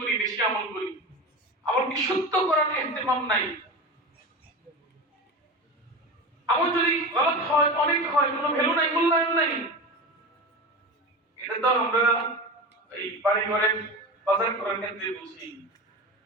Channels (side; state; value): both; normal; correlation 0.27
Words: বেশি আমল করি, আমল কি সত্য করার ইহতিমাম নাই। আমল যদি গলত হয়, অনেক হয়, কোনো ভ্যালু নাই, মূল্যায়ন নাই। এটা তো আমরা এই বাড়ি ঘরে বাজার করার ক্ষেত্রে বুঝি।